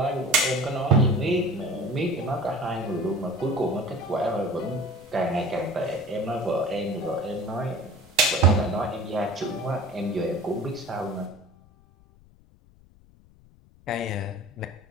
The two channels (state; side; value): noise; left; rumble, 27 dB below the sound